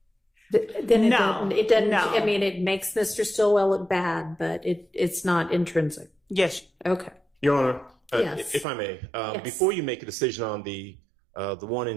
Then it doesn't. No. I mean, it makes Mr. Stillwell look bad, but it's not intrinsic. Yes. Okay. Your Honor, Yes. if I may, Yes. before you make a decision on the one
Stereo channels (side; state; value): left; drops out; at 8.7 s